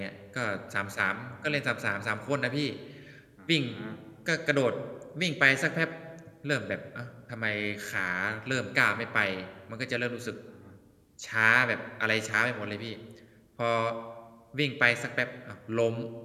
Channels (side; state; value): both; identical; correlation 1.00